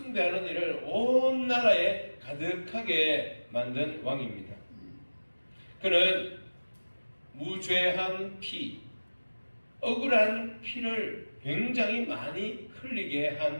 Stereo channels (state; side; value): inverted; both; correlation -1.00